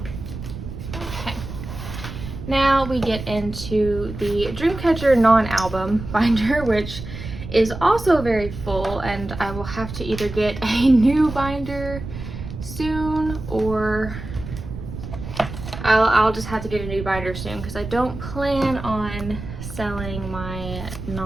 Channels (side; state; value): right; noise; rumble, 9 dB below the sound